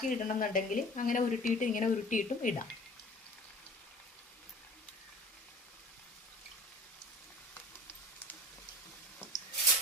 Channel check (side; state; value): both; normal; correlation 0.44